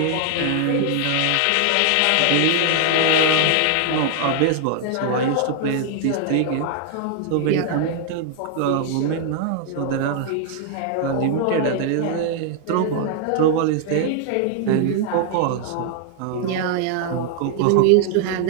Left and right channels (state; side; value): different; both; correlation 0.00